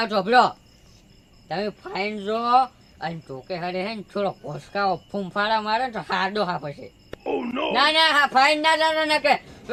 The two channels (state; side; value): identical; both; correlation 1.00